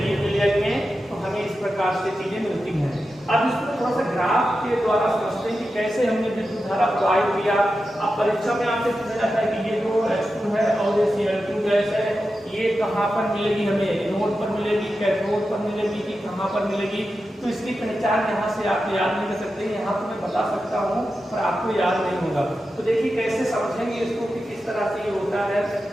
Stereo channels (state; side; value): normal; both; correlation 0.91